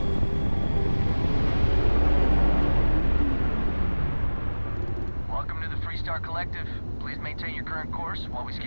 Welcome to the Freestar Collective. Please maintain your current course while we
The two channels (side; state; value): both; inverted; correlation -1.00